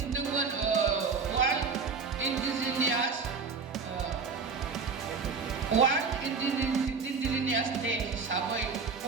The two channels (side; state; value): left; quieter; 5.1 dB